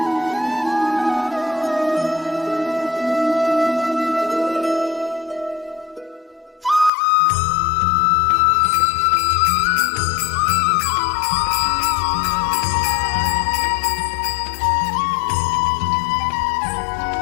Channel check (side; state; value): right; drops out; at 6.9 s